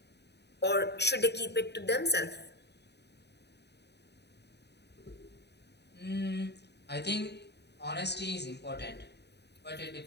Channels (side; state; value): right; late; 0.49 ms